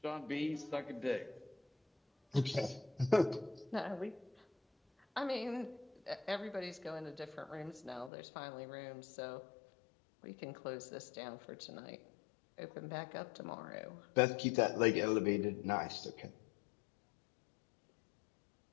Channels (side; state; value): right; drops out; at 8.1 s